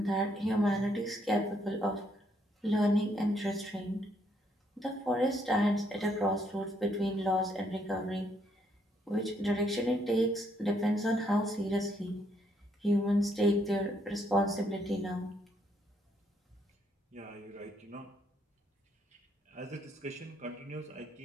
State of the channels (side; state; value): both; normal; correlation 0.71